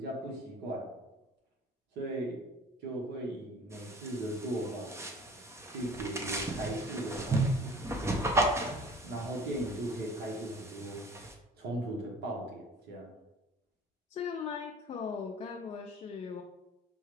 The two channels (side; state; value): both; normal; correlation 0.46